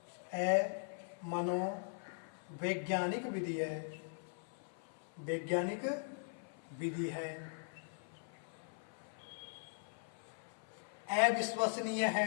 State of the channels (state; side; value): silent; right; 51 dB below the other